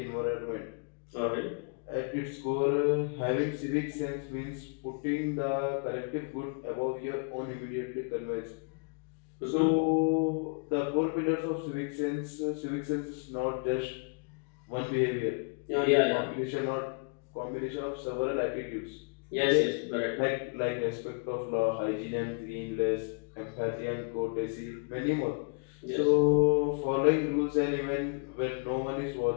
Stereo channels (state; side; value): quieter; right; 39.6 dB